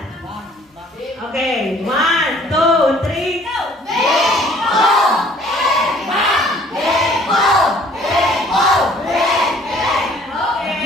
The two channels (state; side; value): normal; both; correlation 0.56